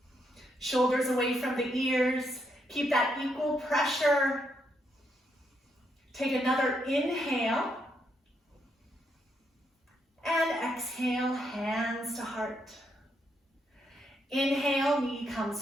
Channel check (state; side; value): normal; both; correlation 0.78